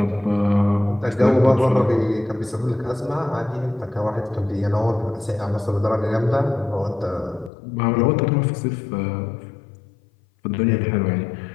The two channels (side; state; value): right; drops out; at 7.5 s